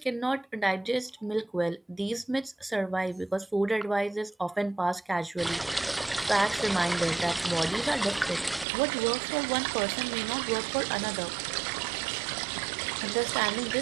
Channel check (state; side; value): drops out; left; at 8.7 s